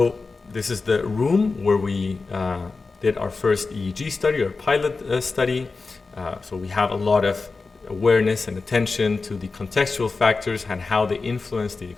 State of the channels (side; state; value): right; quieter; 4.1 dB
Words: this is the room where we did our first EEG study, our pilot study. So we have a lot of awareness and attention to the contextual factors and how they influence the